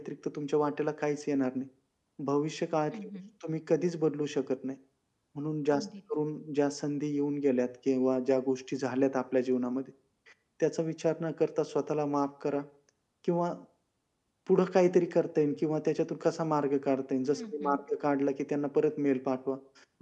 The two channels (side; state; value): both; identical; correlation 1.00